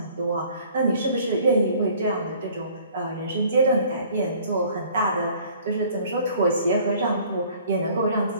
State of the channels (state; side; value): inverted; both; correlation -0.54